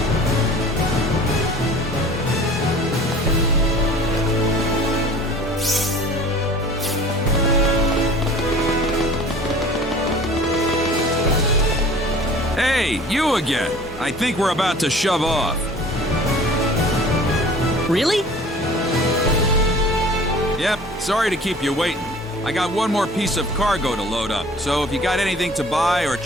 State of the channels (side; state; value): both; normal; correlation 0.46